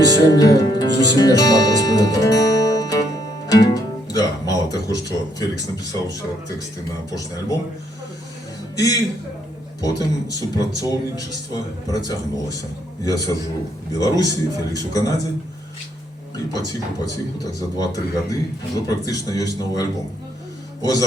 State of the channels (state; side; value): normal; both; correlation 0.71